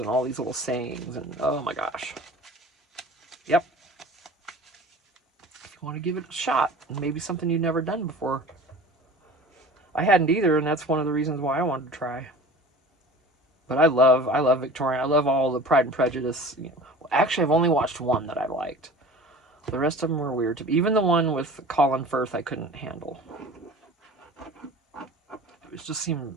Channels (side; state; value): both; normal; correlation 0.41